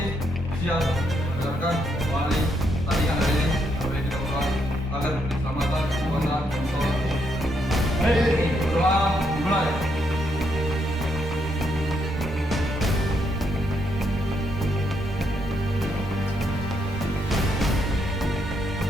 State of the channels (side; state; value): both; normal; correlation 0.76